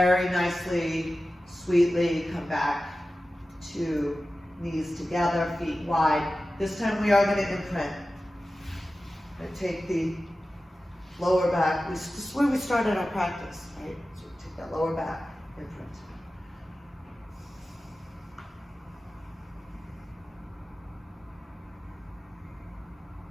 nicely, sweetly come back to knees together, feet wide. This time we are going to imprint. And take the lower back. This is where we started our practice, right? So take that lower back, imprint.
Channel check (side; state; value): both; normal; correlation 0.94